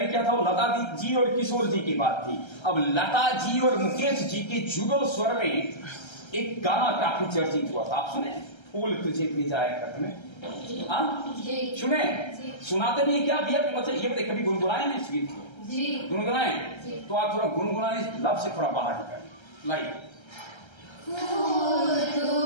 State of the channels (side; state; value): right; late; 1.3 ms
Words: किया था वो लता जी और किशोर जी की बात थी। अब लता जी और मुकेश जी के जुगल स्वर में एक गाना काफी चर्चित हुआ था, आप सुने? फूल तुझे भेजा है खत में। सुने? सुनाते नहीं क्या भैया? मतलब ये कभी गुनगुनाए ना इस गीत को? गुनगुनाए तो आप थोड़ा गुनगुनाने लब से थोड़ा बाहर निकालें। लाइक